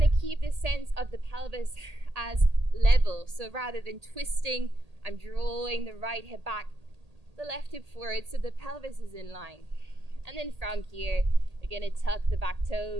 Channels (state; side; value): late; left; 1.8 ms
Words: to keep this sense of the pelvis as level. So rather than twisting, I'm drawing the right hip back, the left hip forward, so the pelvis is in line. And then from here, we're going to tuck the back